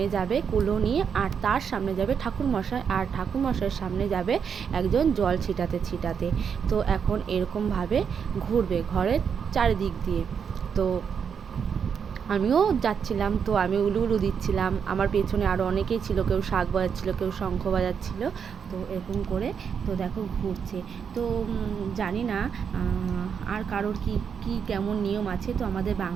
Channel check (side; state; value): left; quieter; 7.0 dB